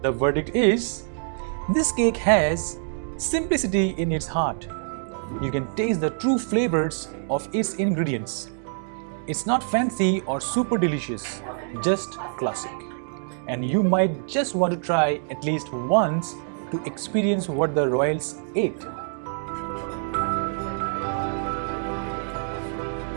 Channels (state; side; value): silent; left; digital silence